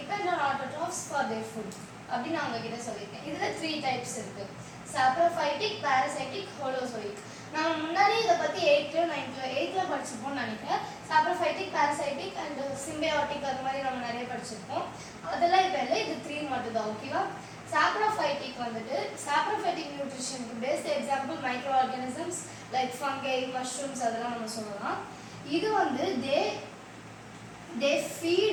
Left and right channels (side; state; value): both; identical; correlation 1.00